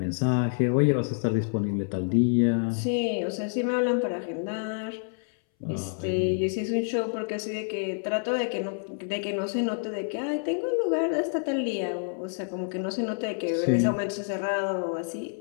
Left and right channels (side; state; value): right; silent; 60 dB below the other